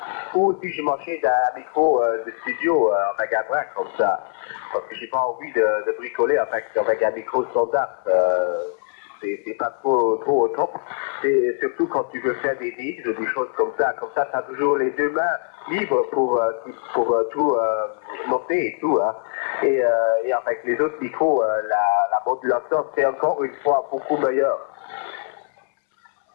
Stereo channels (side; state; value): right; silent; 64 dB below the other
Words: Ou si je m'achète un micro de studio avec un bras comme ça. Parce que j'ai pas envie de bricoler avec un micro standard. C'est pas trop au top. C'est surtout quand tu veux faire des mix ou des choses comme ça. Comme ça, tu as toujours les deux mains libres pour tout noter et tout. Hein. Et avec les autres micros, la modulation, c'est encore une fois beaucoup meilleure.